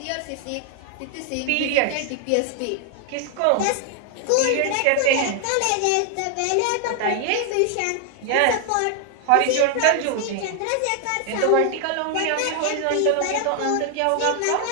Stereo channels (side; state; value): both; different; correlation 0.00